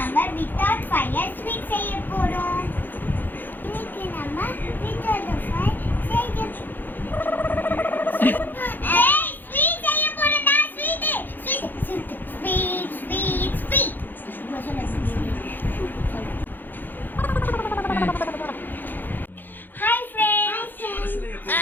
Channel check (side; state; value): right; late; 0.089 ms